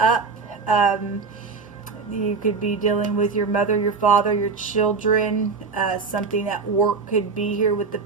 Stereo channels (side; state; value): left; quieter; 4.8 dB